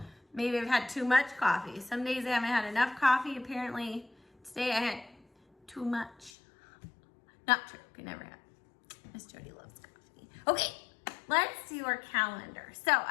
maybe I've had too much coffee. Some days I haven't had enough coffee. Apparently today I had too much. Not true, could never have. Miss Jody loves coffee. Okay, let's do our calendar. So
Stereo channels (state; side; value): drops out; right; at 6.3 s